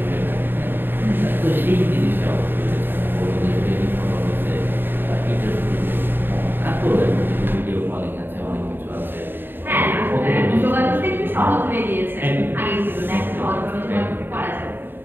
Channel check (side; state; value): left; late; 0.096 ms